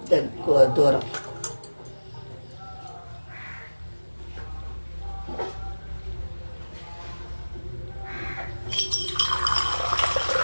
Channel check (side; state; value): both; inverted; correlation -1.00